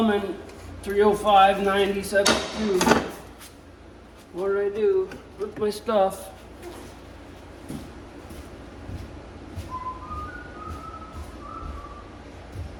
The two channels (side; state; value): both; identical; correlation 1.00